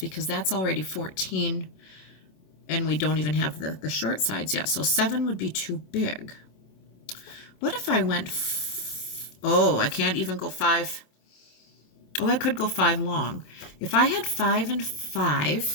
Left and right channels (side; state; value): right; late; 27 ms